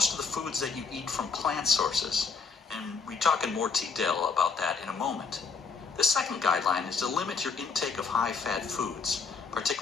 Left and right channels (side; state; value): right; quieter; 5.1 dB